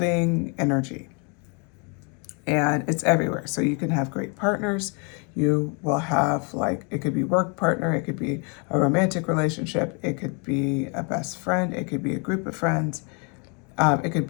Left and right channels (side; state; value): right; quieter; 35.1 dB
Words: energy, and it's everywhere. So you can have great partners. You will have, like, it could be work partner, it could be a romantic relationship, it could be a best friend, it could be a group of friends, it could